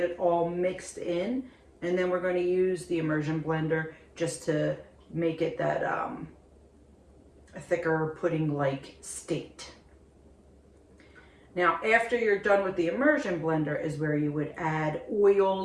it all mixed in. And then we're going to use the immersion blender just to make it that a thicker pudding-like state. Now after you're done with the immersion blender is where you would add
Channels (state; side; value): identical; both; correlation 1.00